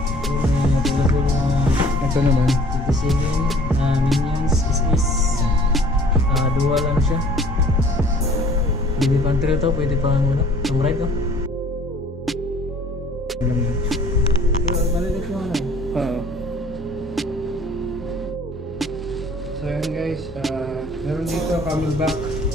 Ito naman Minions is dual ano siya. Pwede pang trail to, pwede pang pang ride to. Malilit mo Oo. So yun guys, meron dito camelback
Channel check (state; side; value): normal; both; correlation 0.52